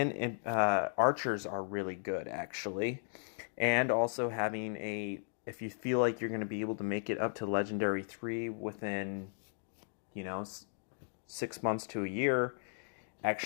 archers are really good actually, and also having a if you feel like you're going to be able to make it up to legendary 3 within you know 6 months to a year,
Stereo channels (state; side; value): silent; right; digital silence